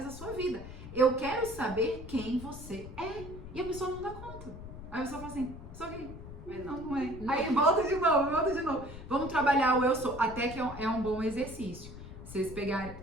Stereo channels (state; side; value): noise; left; rumble, 12 dB below the sound